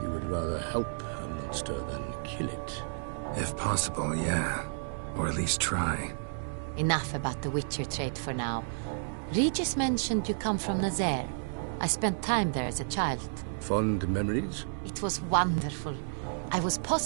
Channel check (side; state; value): left; silent; 57 dB below the other